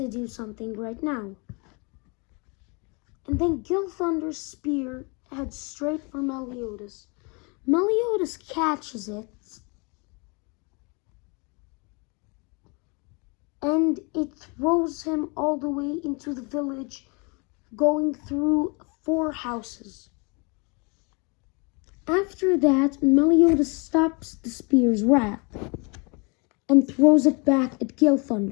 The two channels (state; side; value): quieter; right; 31.4 dB